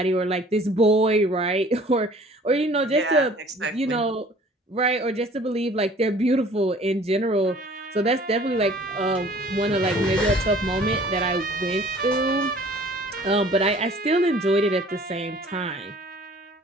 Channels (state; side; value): normal; both; correlation 0.51